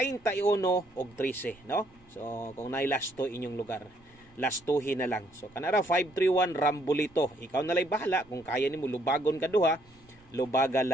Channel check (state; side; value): noise; right; rumble, 29 dB below the sound